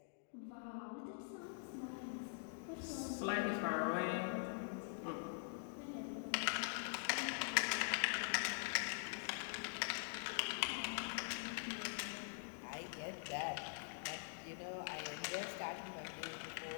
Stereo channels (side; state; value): right; silent; digital silence